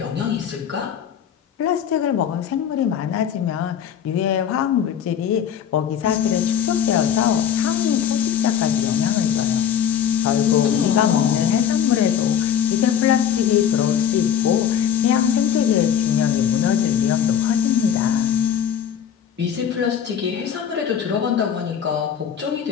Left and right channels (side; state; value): right; quieter; 8.8 dB